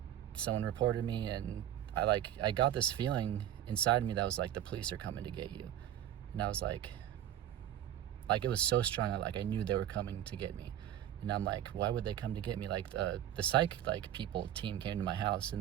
someone reported me, and I got this feeling inside me that was like, the police are coming to get you. And I was like it was so strong. I knew they were coming to get me. And I'm like, why would they come to get me? Like, the psych team came to my house,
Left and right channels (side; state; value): left; quieter; 11.4 dB